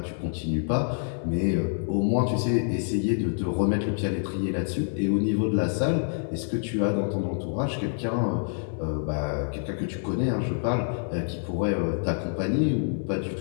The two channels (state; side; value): silent; right; digital silence